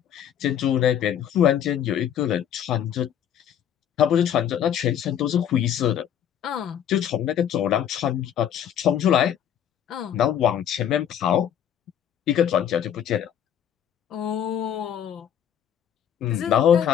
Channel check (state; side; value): quieter; right; 9.6 dB